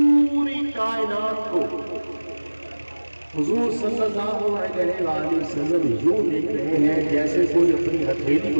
कायनात को हुजूर सल्लल्लाहु अलैहि वसल्लम यूं देख रहे हैं जैसे कोई अपनी हथेली को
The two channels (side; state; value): both; inverted; correlation -1.00